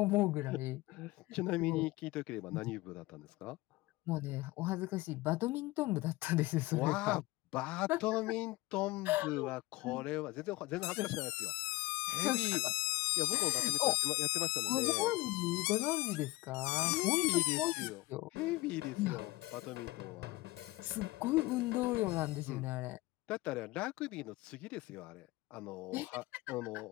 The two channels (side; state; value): right; quieter; 20.6 dB